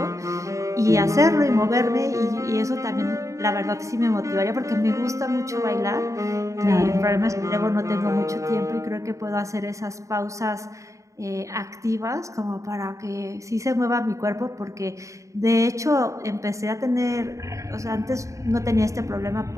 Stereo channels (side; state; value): left; late; 0.15 ms